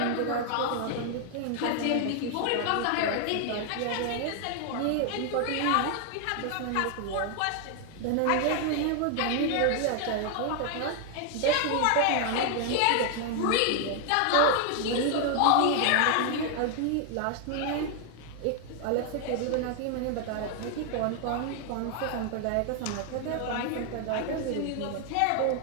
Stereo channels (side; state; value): both; different; correlation 0.00